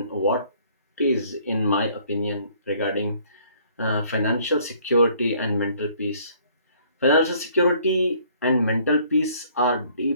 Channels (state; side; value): inverted; both; correlation -0.60